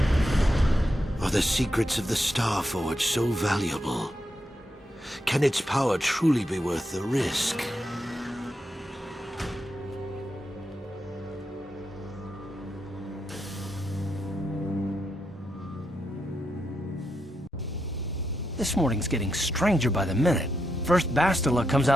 Are the secrets of the Star Forge so valuable? Can its power truly be worth the risk? This morning's getting stranger by the minute. First Bastila comes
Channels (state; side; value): normal; both; correlation 0.83